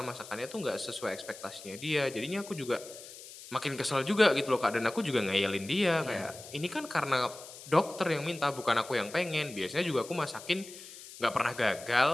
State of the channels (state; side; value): noise; left; hiss, 15 dB below the sound